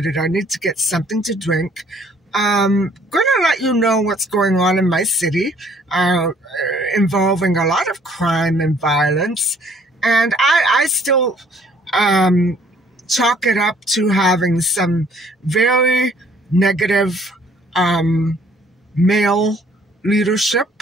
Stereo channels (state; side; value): normal; both; correlation 0.60